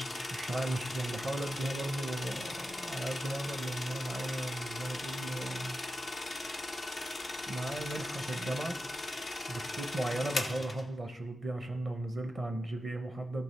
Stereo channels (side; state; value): both; normal; correlation 0.91